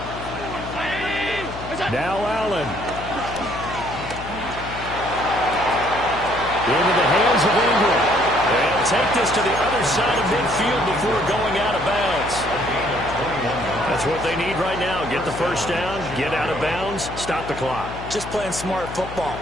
Now Allen. Into the hands of Ingram. They'll take this to the other side of midfield before going out of bounds. That's what they need right now. Get the first down, get out of bounds, stop the clock. Just playing smart football,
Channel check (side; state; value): left; noise; hum, 11 dB below the sound